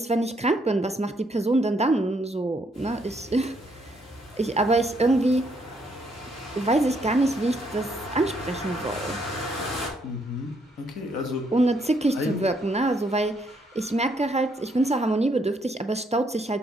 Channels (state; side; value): normal; both; correlation 0.72